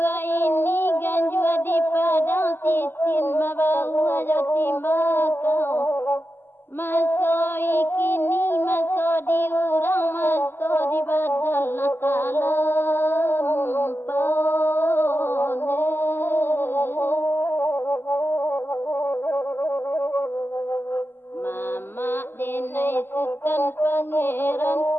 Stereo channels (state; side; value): late; right; 0.10 ms